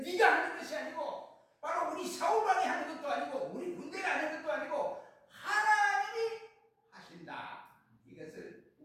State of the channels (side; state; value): both; identical; correlation 1.00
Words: 네가 하는 것이 아니고 바로 우리 사울왕이 하는 것도 아니고 우리 군대가 하는 것도 아니고 하나님이 하신다, 이것을